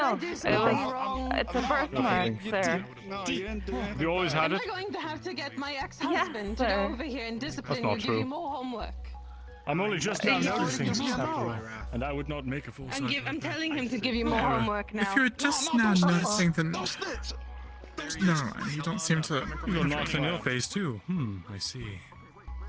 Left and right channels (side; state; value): both; identical; correlation 1.00